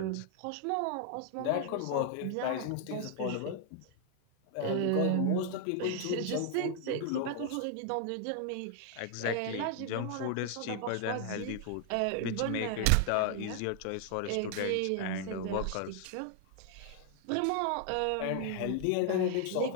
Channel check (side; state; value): both; different; correlation 0.00